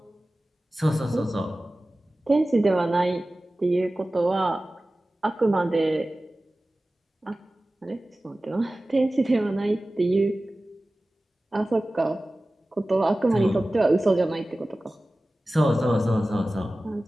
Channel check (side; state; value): both; normal; correlation 0.96